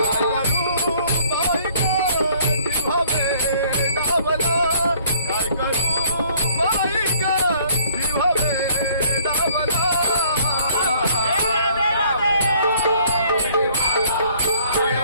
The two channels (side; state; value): both; inverted; correlation -0.59